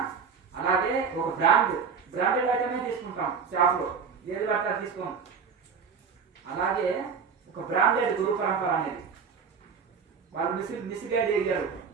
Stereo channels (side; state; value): left; quieter; 5.9 dB